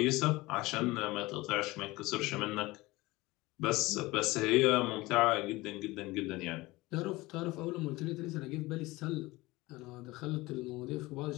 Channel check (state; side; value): quieter; right; 20.6 dB